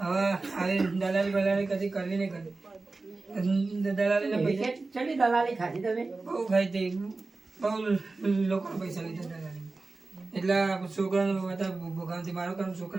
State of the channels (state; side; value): quieter; left; 3.6 dB